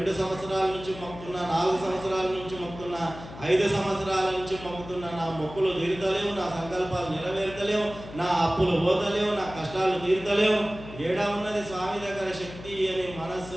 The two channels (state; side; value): noise; left; hum, 14 dB below the sound